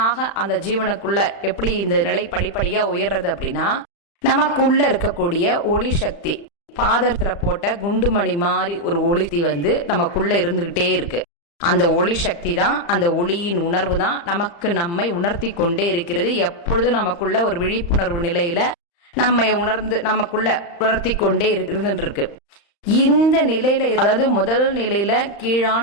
அந்த ஜீவனுக்குள்ள எப்படி இந்த நிலை படிப்படியா உயர்றது அப்படின்னா, நமக்குள்ள இருக்கக்கூடிய ஒளி சக்தி பாதத்துல போட்ட குண்டுமணி மாதிரி ஒரு ஒளி நமக்குள்ள இருந்துகிட்டே இருக்கு. அந்த ஒளி சக்தி தான், அந்த ஒளியின் உணர்வு தான் நம்மை உணர்த்தி கொண்டே இருக்கிறது. எப்பொழுதும் நமக்குள்ள ஒரு விழிப்புணர்வு நிலையில நம்மை நமக்குள்ள உணர்த்தி கொண்டே இருக்கு. இந்த நிலையில, அதாவது முதல் நிலையில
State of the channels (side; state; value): right; late; 35 ms